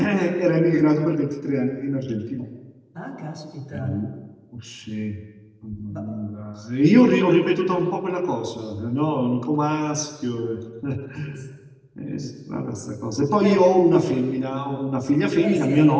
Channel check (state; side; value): identical; both; correlation 1.00